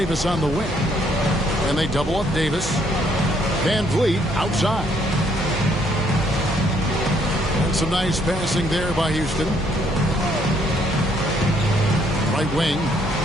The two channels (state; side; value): noise; right; hum, 12 dB below the sound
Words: on the wing. And they double up Davis. VanVleet outside. And some nice passing there by Houston. Right wing.